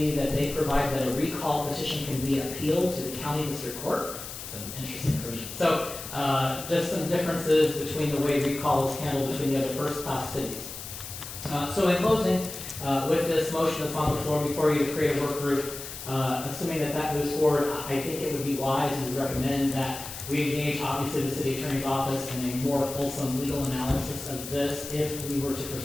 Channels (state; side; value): noise; left; hiss, 10 dB below the sound